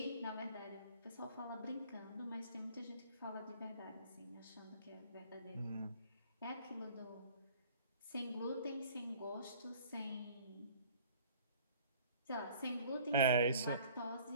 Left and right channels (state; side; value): inverted; both; correlation -0.52